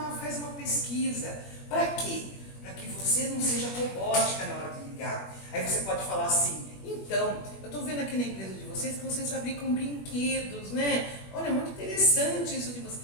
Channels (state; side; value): late; right; 21 ms